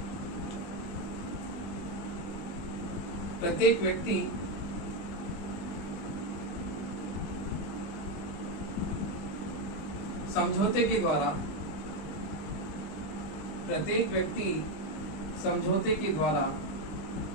प्रत्येक व्यक्ति समझौते के द्वारा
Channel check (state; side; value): late; right; 19 ms